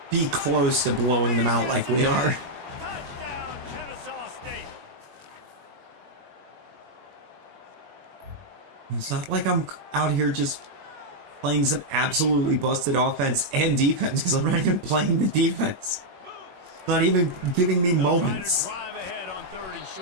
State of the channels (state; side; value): late; left; 21 ms